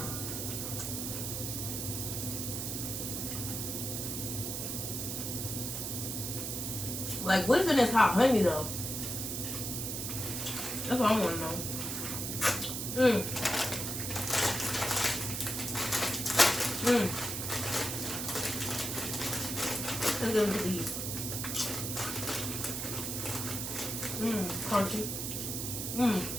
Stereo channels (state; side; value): noise; right; hiss, 3 dB below the sound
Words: Like, what's in this hot honey, though? That's what I want to know. Let's go with these. Crunchy.